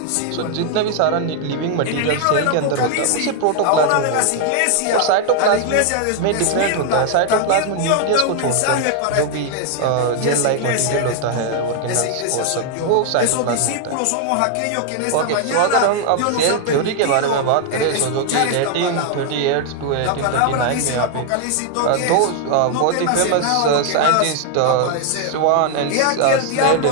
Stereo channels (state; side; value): different; both; correlation 0.00